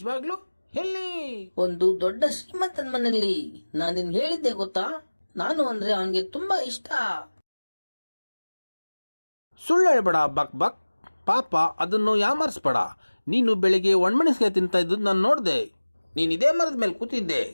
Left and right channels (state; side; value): inverted; both; correlation -1.00